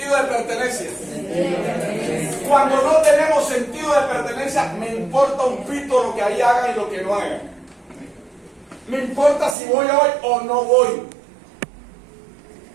de pertenencia. Cuando no tenemos sentido de pertenencia, me importa un pito lo que ahí hagan y lo que no hagan. Me importa si voy hoy o no voy.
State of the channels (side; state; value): left; drops out; at 9.6 s